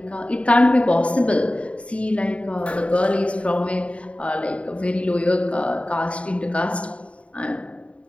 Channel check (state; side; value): late; right; 0.063 ms